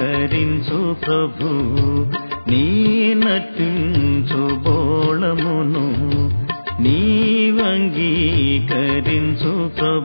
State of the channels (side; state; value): both; inverted; correlation -1.00